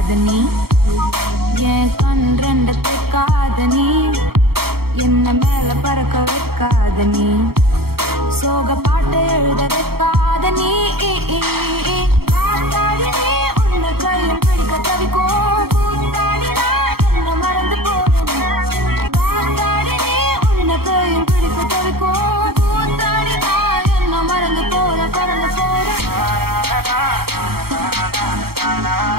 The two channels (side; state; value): left; late; 0.95 ms